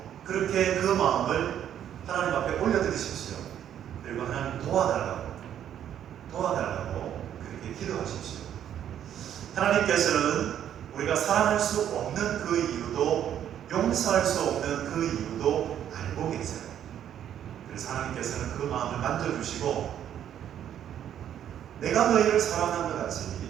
그렇게 그 마음을 하나님 앞에 올려드리십시오. 그리고 하나님 도와달라고 그렇게 기도하십시오. 하나님께서는 우리가 사랑할 수 없는 그 이유도 용서할 수 없는 그 이유도 알고 계세요. 그래서 하나님께서는 그 마음을 만져주시고 내가 너희를 사랑한 것 같이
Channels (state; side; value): quieter; left; 10.1 dB